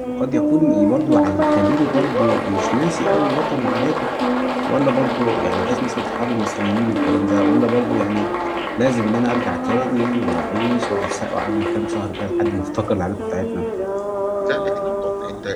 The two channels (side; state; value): both; identical; correlation 1.00